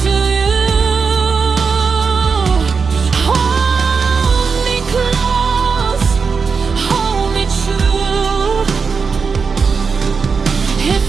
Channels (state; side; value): quieter; left; 5.3 dB